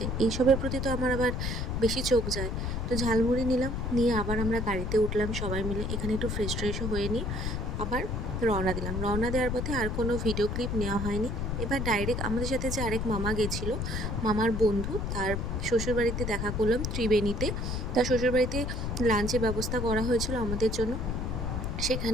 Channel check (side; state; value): left; noise; rumble, 2 dB below the sound